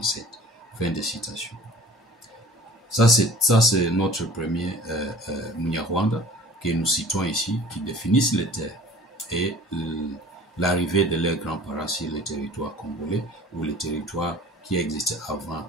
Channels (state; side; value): normal; both; correlation 0.47